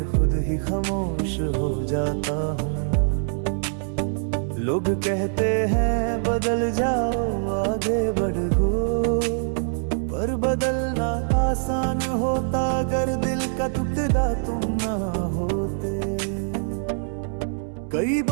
खुद ही खामोश हो जाता हूँ। लोग कहते हैं बदल जाओ आगे बढ़ो, पर बदलना आसान होता अगर दिल का टुकड़ा तुम ना होते। कई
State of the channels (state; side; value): silent; left; 63 dB below the other